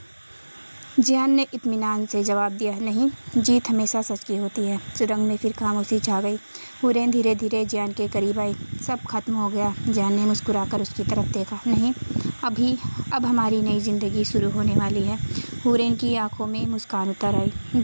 جیان نے اطمینان سے جواب دیا، نہیں، جیت ہمیشہ سچ کی ہوتی ہے۔ سرنگ میں پھر خاموشی چھا گئی۔ حورین دھیرے دھیرے جیان کے قریب آئی۔ سب ختم ہو گیا۔ جیان نے مسکرا کر اس کی طرف دیکھا، نہیں، اب ہماری نئی زندگی شروع ہونے والی ہے۔ حورین کی آنکھوں میں مسکان اتر آئی۔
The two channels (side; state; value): both; inverted; correlation -1.00